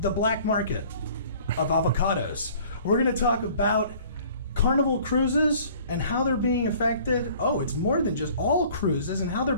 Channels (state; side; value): inverted; both; correlation -0.51